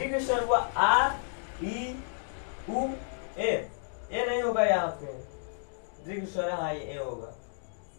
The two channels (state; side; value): silent; right; digital silence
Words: स्वर हुआ आ ई उ ए नहीं होगा यहाँ पे दीर्घ स्वर, हाँ ये ए होगा,